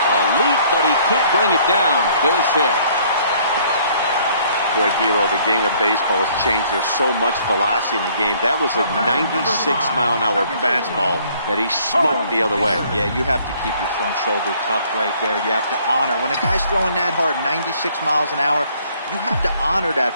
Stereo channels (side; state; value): both; inverted; correlation -0.61